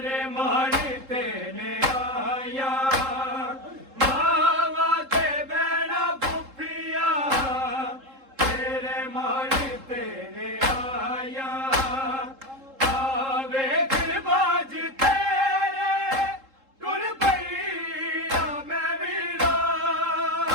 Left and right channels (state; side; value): late; left; 3.7 ms